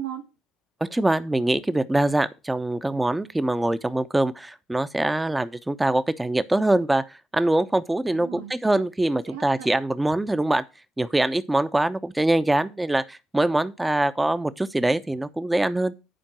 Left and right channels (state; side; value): normal; both; correlation 0.98